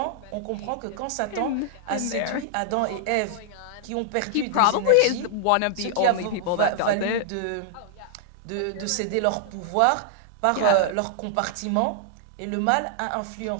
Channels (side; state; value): both; different; correlation -0.01